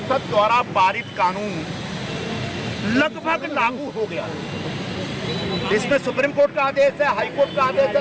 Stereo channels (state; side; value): identical; both; correlation 1.00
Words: द्वारा पारित कानून लगभग लागू हो गया। इसमें सुप्रीम कोर्ट का आदेश है, हाई कोर्ट का आदेश